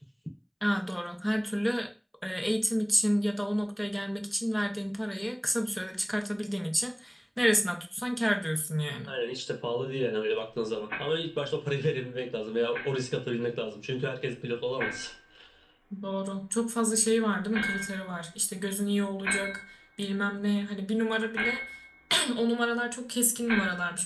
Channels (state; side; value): identical; both; correlation 1.00